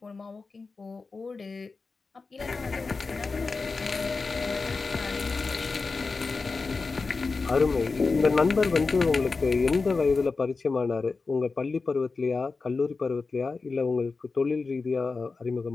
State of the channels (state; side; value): quieter; right; 4.2 dB